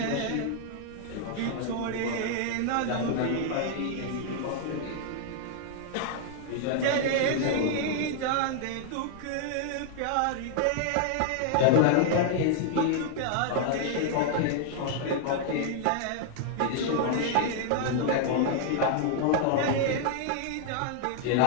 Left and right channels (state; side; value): different; both; correlation -0.01